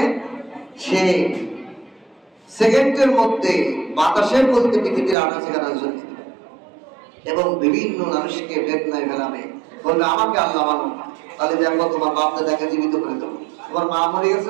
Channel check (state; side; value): drops out; left; at 5.2 s